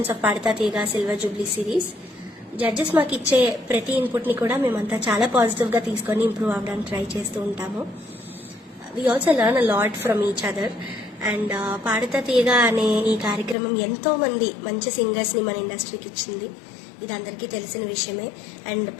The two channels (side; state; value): right; drops out; at 13.6 s